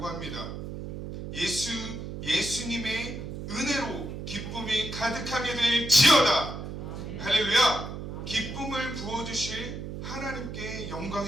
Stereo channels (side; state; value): right; noise; hum, 7 dB below the sound